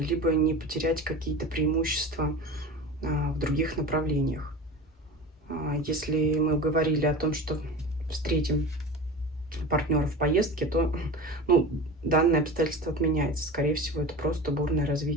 либо не потерять какие-то преимущества в других направлениях. Если мы говорили о том, что встретим партнера в поездке, то данное обстоятельство отменяется. Скорее всего, это просто бурное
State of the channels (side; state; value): both; normal; correlation 0.32